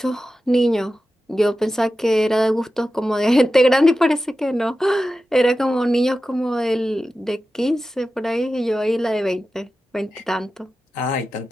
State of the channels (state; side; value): normal; both; correlation 0.93